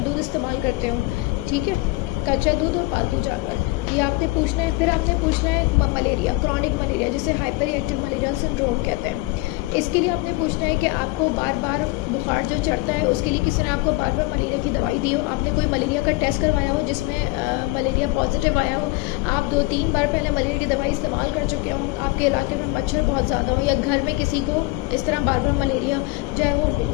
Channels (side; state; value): right; quieter; 20.9 dB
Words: दूध इस्तेमाल करते हो, ठीक है, कच्चा दूध और पालतू जानवर, ये आपने पूछना है। फिर आपने पूछना है मलेरिया, क्रॉनिक मलेरिया, जिसे हाइपर रिएक्टिव मलेरियल सिंड्रोम कहते हैं। इसके लिए आपने पूछना है कि आपको बार बार बुखार जो चढ़ता है उसके लिए किसी ने आपको बार बार मलेरिया की दवाई दी हो, आपने कोई मलेरिया का टेस्ट करवाया हो जिसमें मलेरिया पॉजिटिव आया हो, आप 2-3 बार पहले मलेरिया की दवाई इस्तेमाल कर चुके हो, आपके इलाके में मच्छर बहुत ज़्यादा हो, या घर में किसी को इस तरह बार बार मलेरिया जो है वो